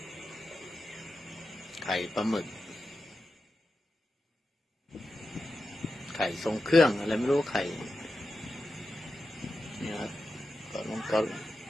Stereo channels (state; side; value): normal; both; correlation 0.91